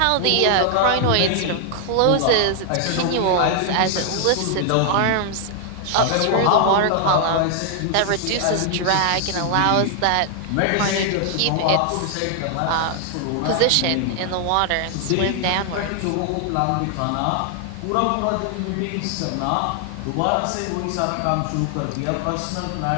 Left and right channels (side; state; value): both; different; correlation 0.00